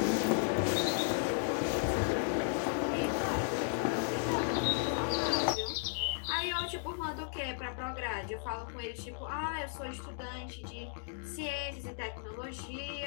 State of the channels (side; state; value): right; silent; digital silence